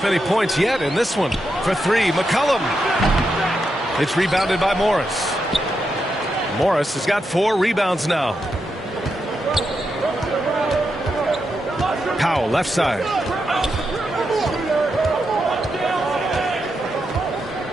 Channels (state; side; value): normal; both; correlation 0.85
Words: any points yet in this one. For 3, McCollum. It's rebounded by Morris. Morris has got 4 rebounds now. Powell, left side.